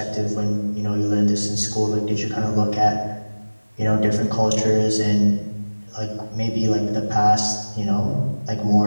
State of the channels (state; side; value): inverted; both; correlation -1.00